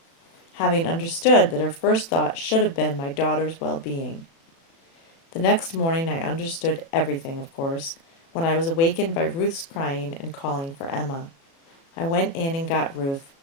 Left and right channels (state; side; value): late; right; 36 ms